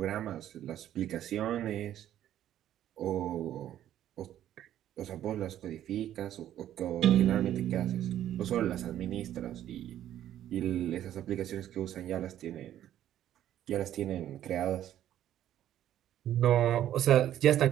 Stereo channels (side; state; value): left; quieter; 11.7 dB